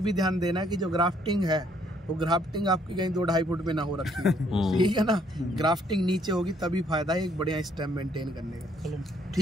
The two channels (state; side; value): normal; both; correlation 0.67